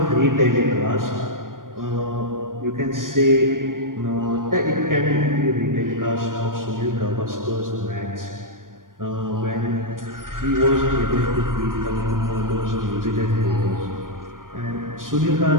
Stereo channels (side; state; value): left; late; 0.90 ms